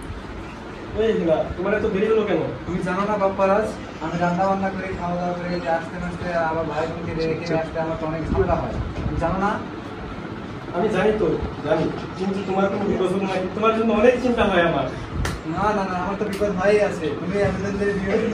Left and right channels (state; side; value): identical; both; correlation 1.00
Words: এই না, তোমার এত দেরি হলো কেন? তুমি জানো না বাপ্পারাজ, আমি রান্না বান্না করে খাওয়া দাওয়া করে আসতে আসতে আমার ভাই বোনকে রেখে আসতে আমার তো অনেক ঝামেলা হয়, তুমি জানো না? আমি জানি তো, জানি, কিন্তু তোমার কোনো বিপদ হলো নাকি? তোমার জন্য অনেক চিন্তা হয় আমার। না না না, আমার তো বিপদ হয়েই আছে। তুমি